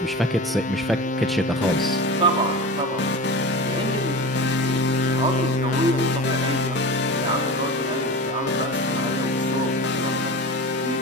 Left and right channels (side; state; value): both; normal; correlation 0.30